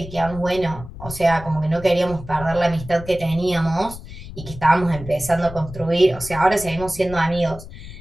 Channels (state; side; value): noise; left; rumble, 13 dB below the sound